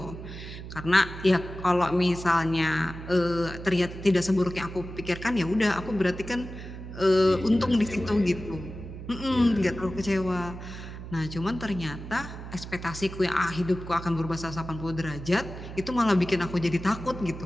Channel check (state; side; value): noise; right; hum, 11 dB below the sound